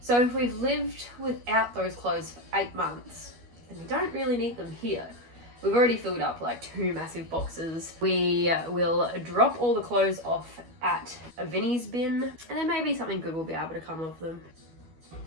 So if we've lived without those clothes for 8 months, then we don't really need them here. We've already filled up like 2 massive boxes. We will drop all the clothes off at a Vinnie's bin, and then maybe something good will be able to come of them.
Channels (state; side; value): late; left; 12 ms